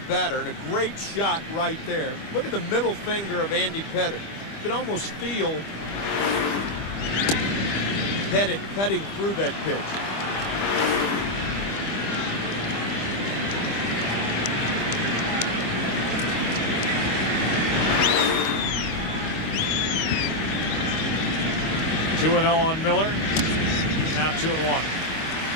batter, and a great shot right there. Look at the middle finger of Andy Pettit. You can almost feel Pettit cutting through that pitch. Two and 0 on Miller. Now 2-1.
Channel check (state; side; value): late; right; 25 ms